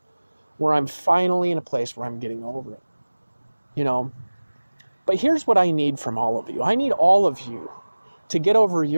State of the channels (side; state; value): both; inverted; correlation -1.00